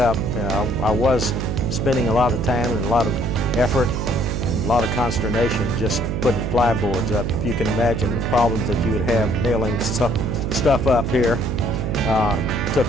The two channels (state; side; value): noise; right; hum, 2 dB below the sound